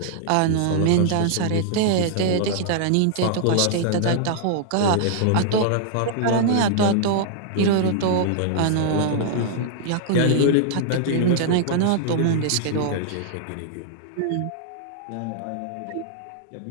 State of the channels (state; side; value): different; both; correlation -0.01